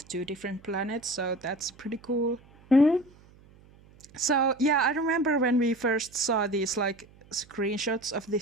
two different planets, so that's pretty cool. So yeah, I remember when we first saw these like screenshots of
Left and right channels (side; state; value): right; noise; hum, 26 dB below the sound